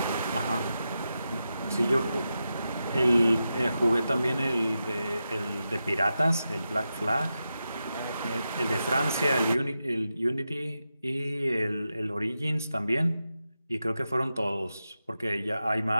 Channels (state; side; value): inverted; both; correlation -0.89